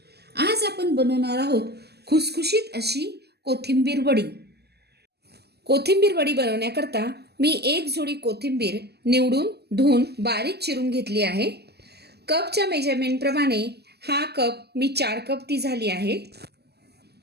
आज आपण बनवणार आहोत खुसखुशीत अशी कोथिंबीर वडी। कोथिंबीर वडी बनवण्याकरता मी एक जोडी कोथिंबीर निवडून धुवून बारीक चिरून घेतली आहे। कपच्या मेजरमेंट प्रमाणे हा कप मी 4 कप ती झाली आहे।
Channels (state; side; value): late; left; 0.47 ms